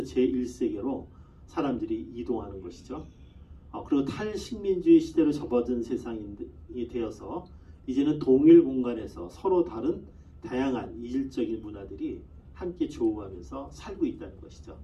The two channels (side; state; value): both; identical; correlation 1.00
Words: 제1세계로 사람들이 이동하는 것이죠. 그리고 탈식민주의 시대로 접어든 세상이 되어서 이제는 동일 공간에서 서로 다른 다양한 이질적인 문화들이 함께 조우하면서 살고 있다는 것이죠.